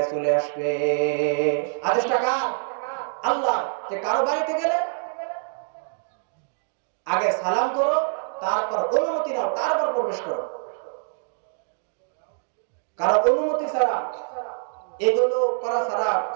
চলে আসবে। আদেশটা কার? আল্লাহ। যে কারো বাড়িতে গেলে আগে সালাম করো, তারপর অনুমতি নাও, তারপর প্রবেশ করো। কারো অনুমতি ছাড়া, এগুলো করা ছাড়া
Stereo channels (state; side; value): silent; left; digital silence